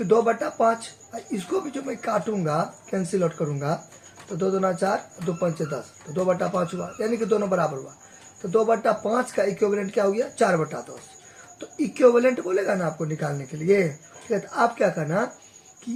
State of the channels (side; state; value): both; identical; correlation 1.00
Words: 2/5, इसको भी जो मैं काटूंगा, कैंसिल आउट करूंगा, तो 2 दूना 4, 2 पंचे 10, तो 2/5 हुआ, यानी कि दोनों बराबर हुआ। तो 2/5 का इक्विवेलेंट क्या हो गया? 4/10। तो इक्विवेलेंट बोलेगा ना आपको निकालने के लिए, ठीक है, तो आप क्या करना